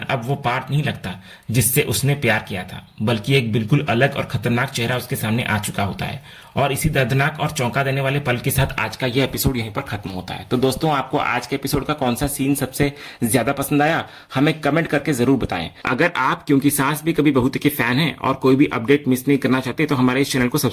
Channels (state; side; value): identical; both; correlation 1.00